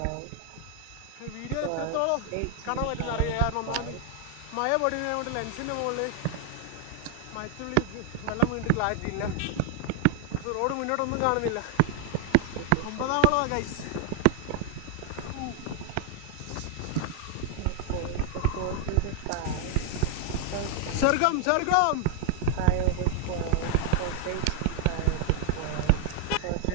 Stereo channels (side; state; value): both; different; correlation 0.00